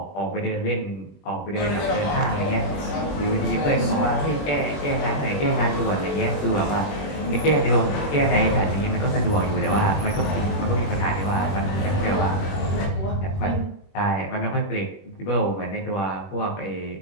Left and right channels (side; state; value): right; late; 21 ms